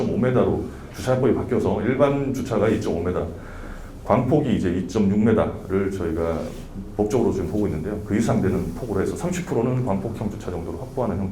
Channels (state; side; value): identical; both; correlation 1.00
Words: 주차법이 바뀌어서 일반 주차가 2.5m, 광폭이 이제 2.6m를 저희가 법적으로 지금 보고 있는데요. 그 이상 되는 폭으로 해서 30%는 광폭형 주차 정도로 확보하는